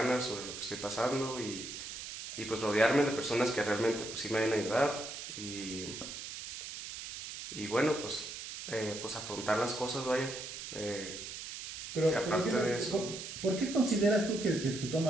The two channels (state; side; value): noise; right; hiss, 9 dB below the sound